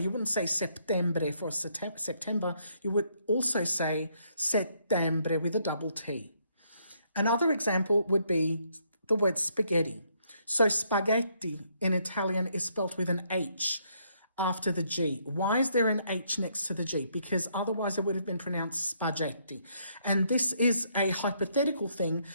wouldn't say settembre for September. You would also say settembre with a double T. Another example would be the word spaghetti. So spaghetti in Italian is spelt with an H after the G. Why is there an H next to the G? Because otherwise it would have been pronounced spaghetti. And this is a hypothetical thing,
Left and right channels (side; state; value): both; inverted; correlation -0.72